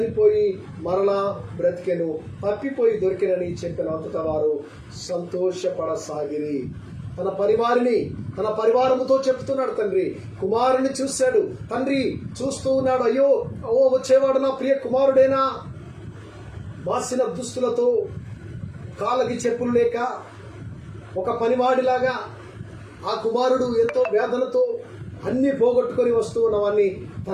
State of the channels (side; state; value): both; identical; correlation 1.00